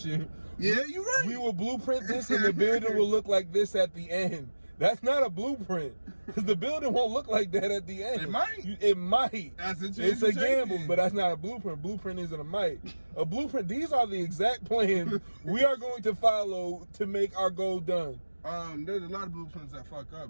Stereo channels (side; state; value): both; inverted; correlation -1.00